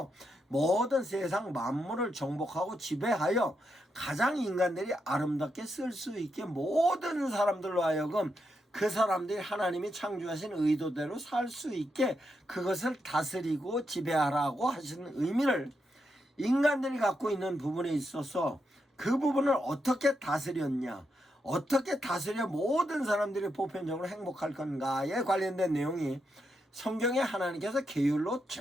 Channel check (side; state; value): both; normal; correlation 0.83